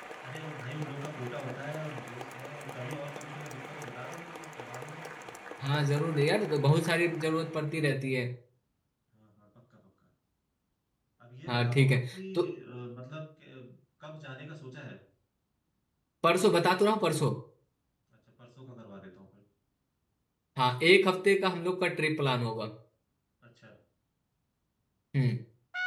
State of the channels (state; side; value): identical; both; correlation 1.00